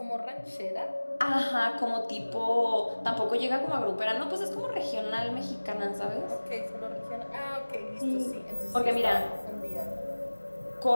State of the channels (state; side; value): inverted; both; correlation -1.00